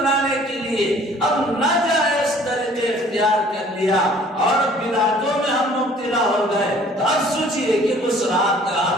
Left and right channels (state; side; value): normal; both; correlation 0.54